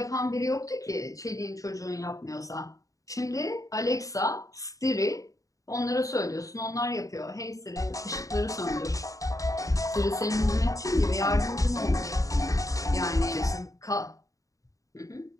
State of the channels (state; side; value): late; right; 0.16 ms